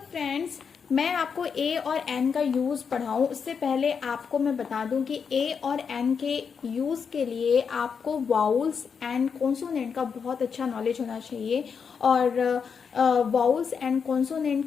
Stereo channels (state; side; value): quieter; right; 6.3 dB